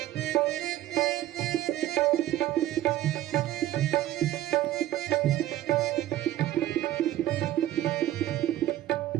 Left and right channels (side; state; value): left; quieter; 13.9 dB